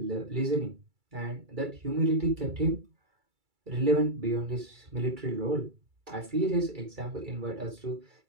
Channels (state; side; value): late; left; 2.3 ms